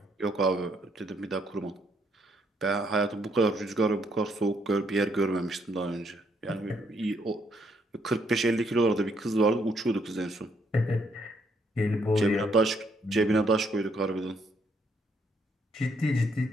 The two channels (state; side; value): normal; both; correlation 0.71